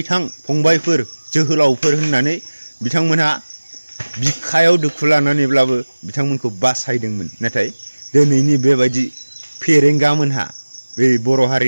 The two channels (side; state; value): both; inverted; correlation -1.00